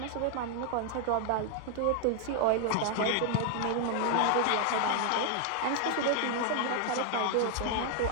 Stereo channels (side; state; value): both; different; correlation 0.00